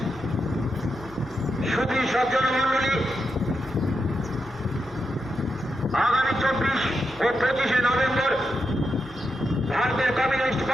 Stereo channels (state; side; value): noise; left; hum, 20 dB below the sound